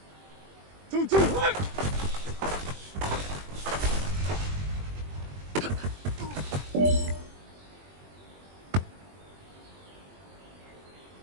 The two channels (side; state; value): left; late; 21 ms